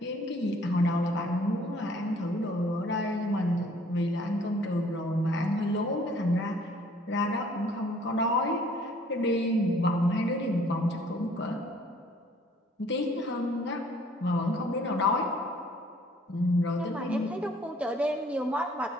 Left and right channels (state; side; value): normal; both; correlation 0.58